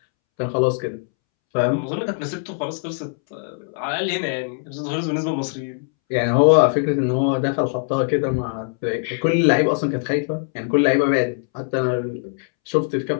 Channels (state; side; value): silent; right; 65 dB below the other